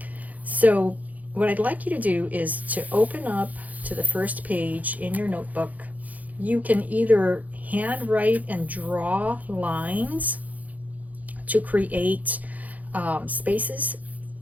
So what I'd like you to do is to open up to the first page in your notebook. You can either handwrite and draw lines to create spaces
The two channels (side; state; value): left; late; 0.078 ms